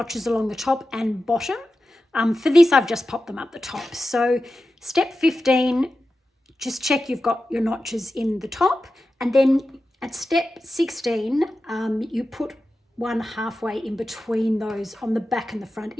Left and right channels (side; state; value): both; normal; correlation 0.92